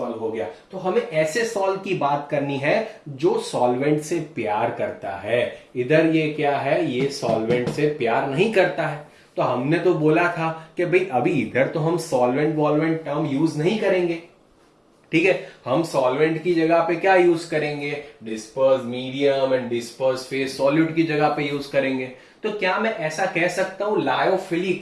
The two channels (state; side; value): identical; both; correlation 1.00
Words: हो गया। तो हमें ऐसे सॉल्व की बात करनी है जो सॉल्वेंट से प्यार करता है। इधर ये क्या है? ये सॉल्वेंट से प्यार नहीं करता है। तो हमने तो बोला था कि भाई अभी इधर तो हम सॉल्वेंट वॉल्वेंट टर्म यूज नहीं करेंगे, ठीक है। हम सॉल्वेंट की जगह पे क्या यूज करेंगे? Disperse medium and disperse phase solute की जगह पे यूज करेंगे। तो क्या मैं ऐसा कह सकता हूं